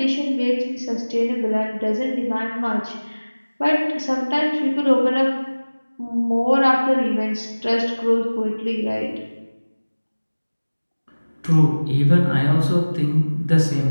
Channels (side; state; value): both; inverted; correlation -1.00